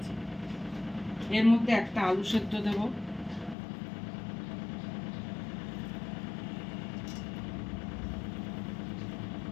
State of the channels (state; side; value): drops out; right; at 3.6 s